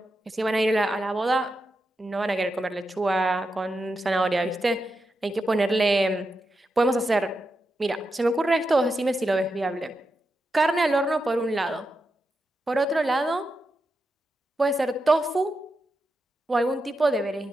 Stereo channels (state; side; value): normal; both; correlation 0.87